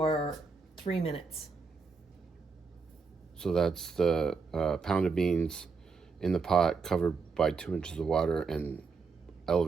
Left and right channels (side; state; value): left; quieter; 4.8 dB